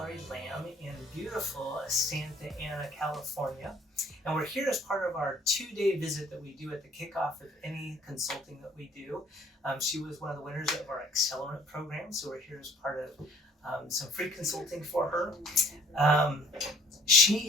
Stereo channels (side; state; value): both; normal; correlation 0.55